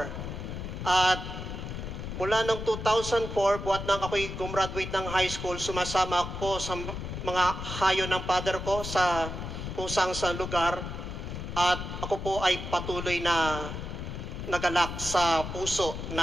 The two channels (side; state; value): left; noise; rumble, 6 dB below the sound